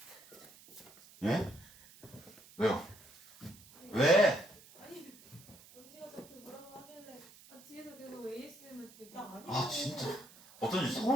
예? 왜요? 왜? 아니 언니가 저한테 뭐라고 하길래 뒤에서 계속 ASMR 듣고 나 아니 아 진짜 어쩐지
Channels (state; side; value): noise; right; hiss, 22 dB below the sound